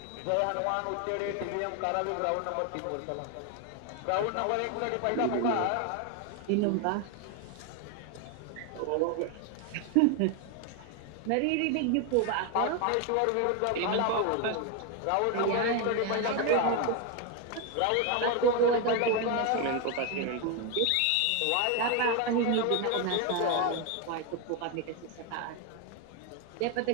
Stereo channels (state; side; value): different; both; correlation 0.01